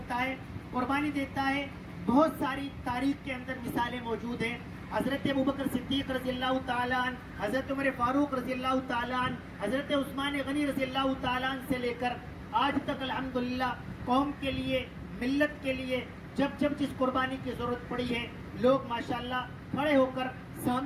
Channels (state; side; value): identical; both; correlation 1.00